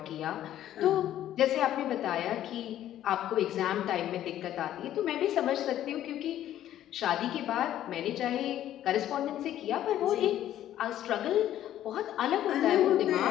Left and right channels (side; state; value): right; quieter; 12.1 dB